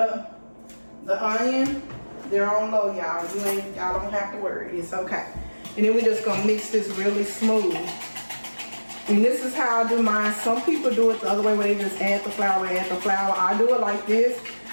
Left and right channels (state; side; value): inverted; both; correlation -1.00